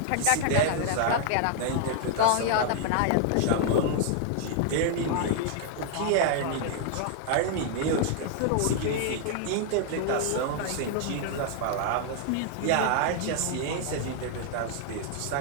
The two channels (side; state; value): both; different; correlation 0.00